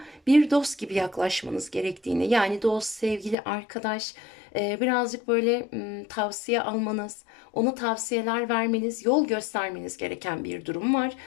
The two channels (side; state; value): right; drops out; at 3.4 s